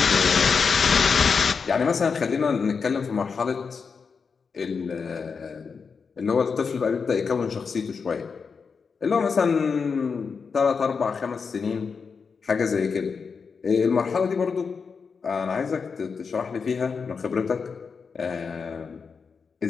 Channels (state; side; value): quieter; right; 5.5 dB